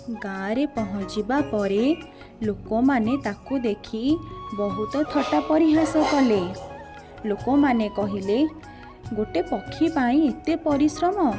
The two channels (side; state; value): both; identical; correlation 1.00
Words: गाँव रे पहुँचीबा परे लोक माने ताकू देखी बहुत थट्टा परिहास कले। लोक माने कहिले, गोटे पक्षी पाई एते परिश्रम,